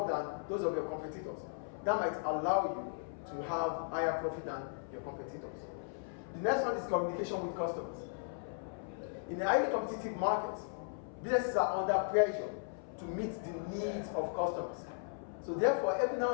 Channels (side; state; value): right; silent; 53 dB below the other